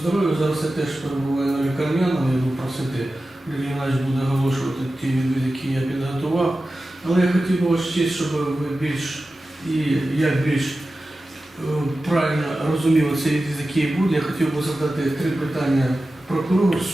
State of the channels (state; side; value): normal; both; correlation 0.94